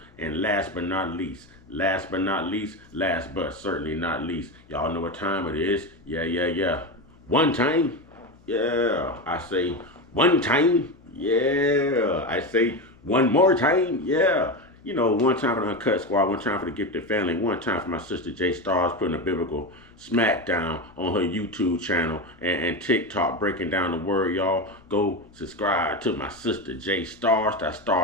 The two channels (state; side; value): noise; left; hum, 28 dB below the sound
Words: And last but not least, last but certainly not least, y'all know what time it is. Yeah. One time, yeah. I say one time, yeah. I say one more time, yeah. You know, one time for the Uncut Squad, one time for the Gifted Family, one time for my sister J Stars putting a biblical smackdown on her YouTube channel and TikTok breaking down the word, y'all. Go subscribe to my sister J Stars. That